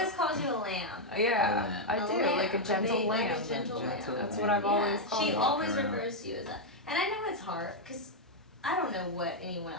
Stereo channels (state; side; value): normal; both; correlation -0.01